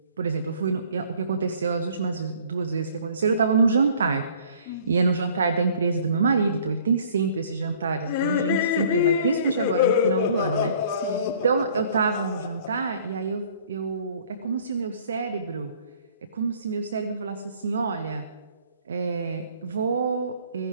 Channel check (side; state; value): both; inverted; correlation -0.55